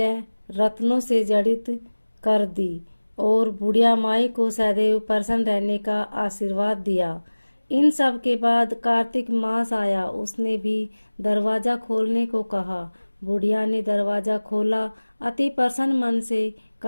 रत्नों से जड़ित कर दी और बुढ़िया माई को सदैव प्रसन्न रहने का आशीर्वाद दिया। इन सब के बाद कार्तिक मास आया, उसने भी दरवाजा खोलने को कहा। बुढ़िया ने दरवाजा खोला, अति प्रसन्न मन से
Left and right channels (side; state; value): both; inverted; correlation -1.00